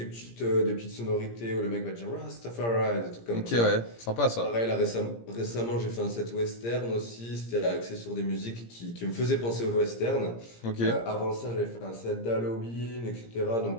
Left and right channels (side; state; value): right; late; 17 ms